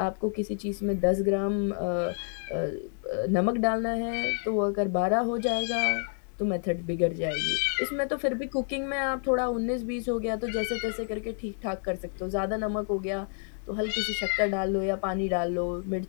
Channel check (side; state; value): right; silent; 59 dB below the other